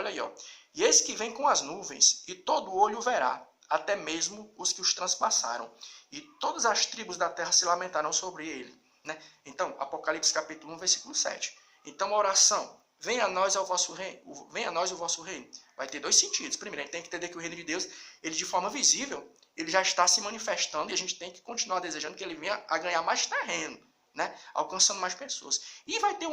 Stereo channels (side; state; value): both; identical; correlation 1.00